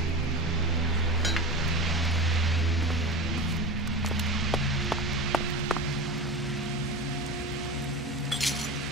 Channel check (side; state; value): both; normal; correlation 0.27